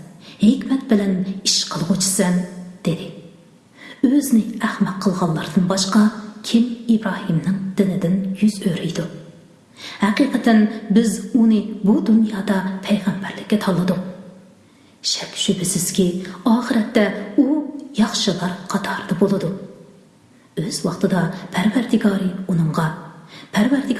hikmat bilan ish qilg'uchisan, dedi. O'zini ahmoq qilganlardan boshqa kim Ibrohimning dinidan yuz o'riydi? Haqiqatan biz uni bu dunyoda payg'ambarlikka tanladik. Shak shubhasizki, oxiratda u yaxshilar qatorida bo'ladi. O'z vaqtida Parvardigori uningga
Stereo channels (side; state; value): both; identical; correlation 1.00